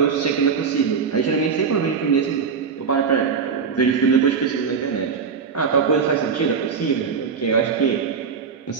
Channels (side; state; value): left; quieter; 5.9 dB